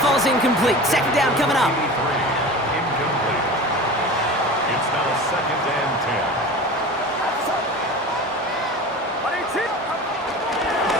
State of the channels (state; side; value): normal; both; correlation 0.34